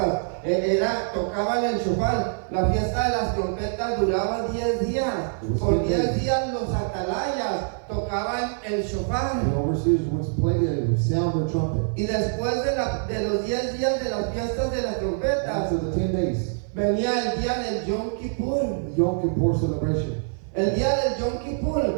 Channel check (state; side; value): silent; left; 56 dB below the other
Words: Tocaban el shofar. La fiesta de las trompetas duraba 10 días. Por 10 días los atalayas tocaban el shofar. The overseers would play the sound the trumpet. Y después de los 10 días de las fiestas de las trompetas, After the 10 days, venía el día del Yom Kippur. the Yom Kippur celebration. El día del Yom